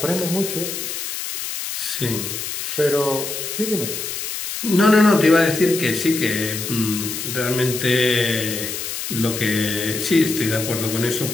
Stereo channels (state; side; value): noise; left; hiss, 5 dB below the sound